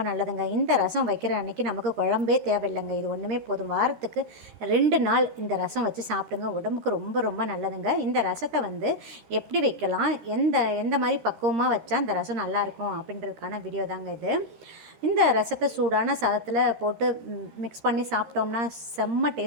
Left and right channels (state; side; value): late; left; 13 ms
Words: நல்லதுங்க. இந்த ரசம் வைக்கிற அன்றைக்கி நமக்கு குழம்பே தேவையில்லைங்க. இது ஒன்றுமே போதும். வாரத்துக்கு 2 நாள் இந்த ரசம் வச்சு சாப்பிடுங்க. உடம்புக்கு ரொம்ப ரொம்ப நல்லதுங்க. இந்த ரசத்தை வந்து எப்படி வைக்கலாம், எந்த மாதிரி பக்குவமாக வச்சா இந்த ரசம் நல்லாயிருக்கும் அப்படின்றதுக்கான வீடியோ தாங்க இது. இந்த ரசத்தை சூடான சாதத்தில் போட்டு மிக்ஸ் பண்ணி சாப்பிட்டோம்னா செம்ம